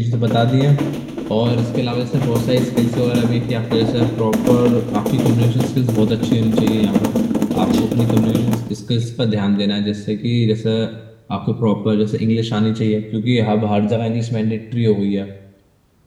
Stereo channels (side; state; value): both; identical; correlation 1.00